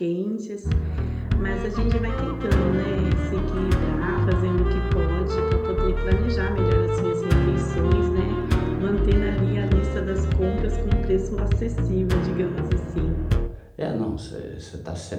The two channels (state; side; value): identical; both; correlation 1.00